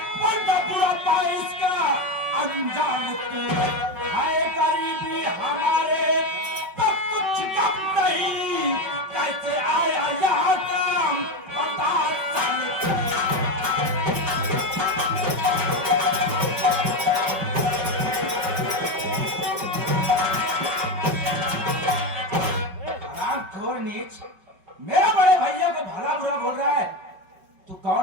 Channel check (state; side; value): late; left; 5.2 ms